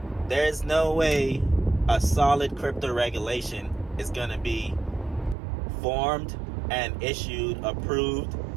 There's no way a solid crypto regulation is going to be formed and issued, approved,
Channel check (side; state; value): left; drops out; at 5.4 s